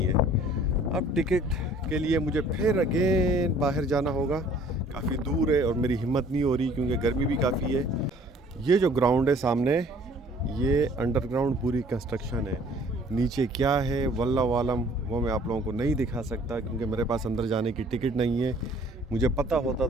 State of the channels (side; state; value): both; normal; correlation 0.55